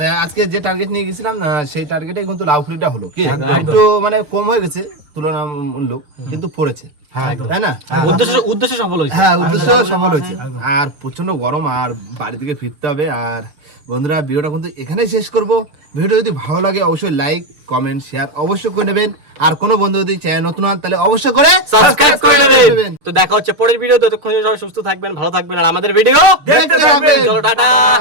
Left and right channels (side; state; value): left; late; 6.7 ms